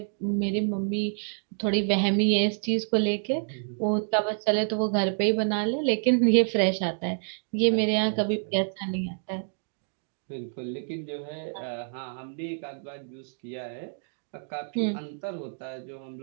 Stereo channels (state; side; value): silent; left; digital silence